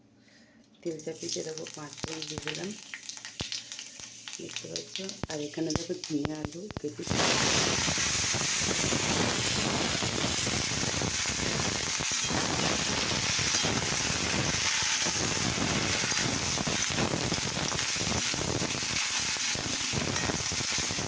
তেল চাপিয়ে দেখো 5 ফোড়ন দিয়ে দিলাম, দেখতে পাচ্ছ। আর এখানে দেখো ঝিঙে আলু কেটে দেবে।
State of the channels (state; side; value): identical; both; correlation 1.00